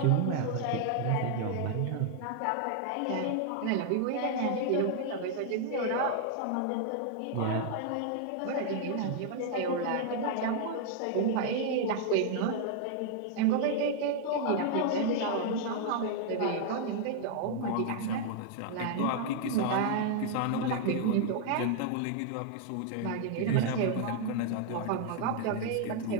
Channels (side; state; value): both; different; correlation 0.00